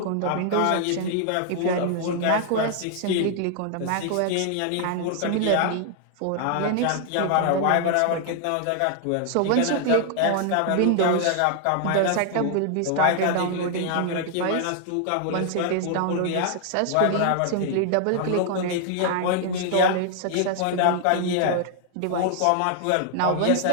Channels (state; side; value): different; both; correlation 0.00